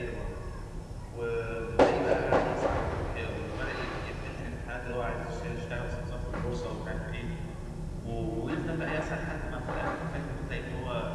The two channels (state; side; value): identical; both; correlation 1.00